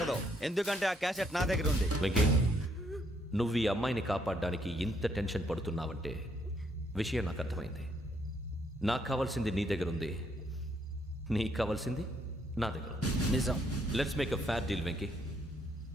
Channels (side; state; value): both; normal; correlation 0.71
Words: ఎందుకంటే ఆ క్యాసెట్ నా దగ్గర ఉంది. వెంకీ, నువ్వు ఈ అమ్మాయిని కాపాడడానికి ఇంత టెన్షన్ పడుతున్నావంటే విషయం నాకు అర్థమైంది. నాకు కావాల్సింది నీ దగ్గర ఉంది, నీకు కావాల్సింది నా దగ్గర. నిజం. Let's make a fair deal Venky.